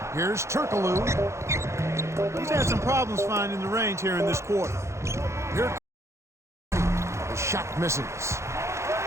Here's Turkoglu. He's had some problems finding the range here in this quarter. Here the shot misses.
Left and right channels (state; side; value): late; left; 0.14 ms